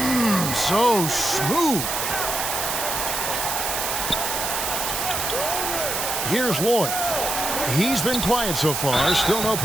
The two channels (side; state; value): right; noise; hiss, 2 dB below the sound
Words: So smooth. Here's Lloyd. He's been quiet so far. Still no